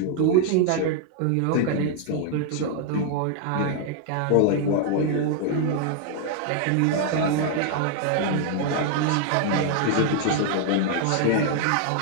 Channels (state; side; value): different; both; correlation 0.00